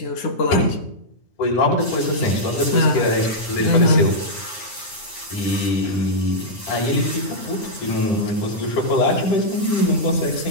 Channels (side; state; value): right; late; 9.6 ms